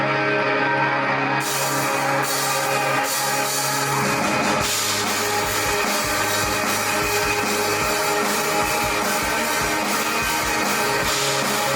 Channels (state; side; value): identical; both; correlation 1.00